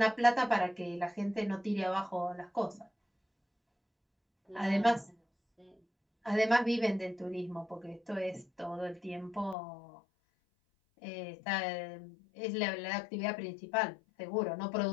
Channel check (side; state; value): right; drops out; at 9.6 s